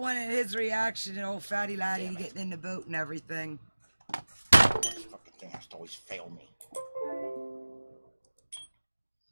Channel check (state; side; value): inverted; both; correlation -1.00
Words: his reaction to old fatty laddie Damn it. getting in the boat and everything. This fucking thing has to always fail me.